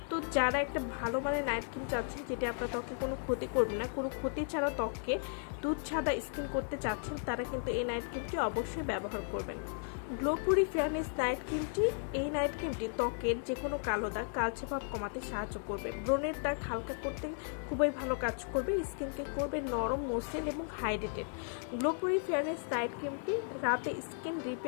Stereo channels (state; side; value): silent; right; 54 dB below the other